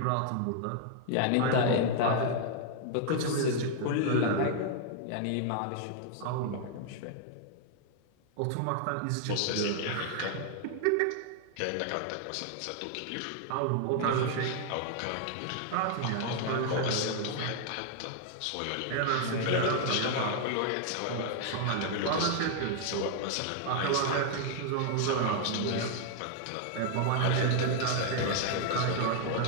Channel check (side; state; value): both; different; correlation 0.00